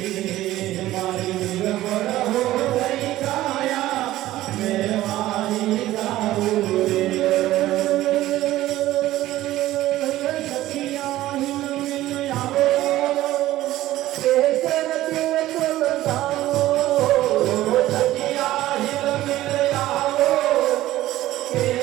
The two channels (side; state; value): left; quieter; 15.3 dB